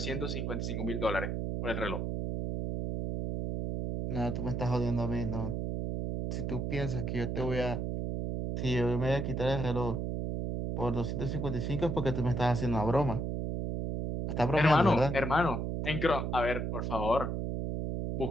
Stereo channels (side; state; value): right; noise; hum, 1 dB below the sound